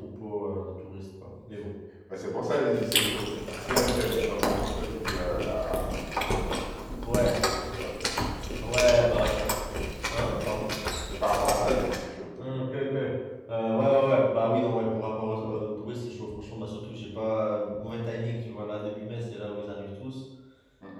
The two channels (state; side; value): identical; both; correlation 1.00